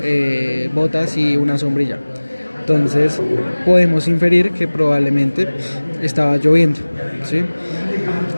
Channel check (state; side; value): inverted; both; correlation -1.00